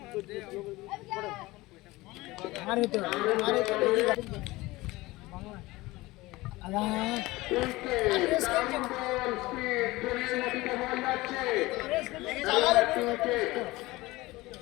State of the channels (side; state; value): right; quieter; 20.1 dB